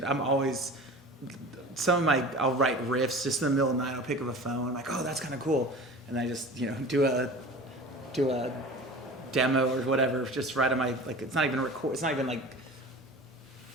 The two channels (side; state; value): both; normal; correlation 0.37